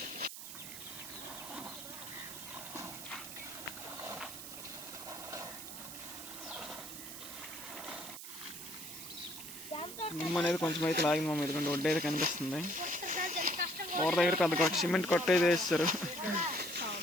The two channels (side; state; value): right; noise; hiss, 10 dB below the sound